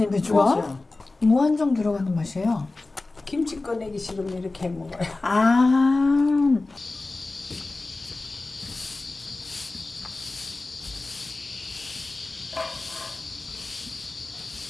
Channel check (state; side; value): quieter; right; 3.3 dB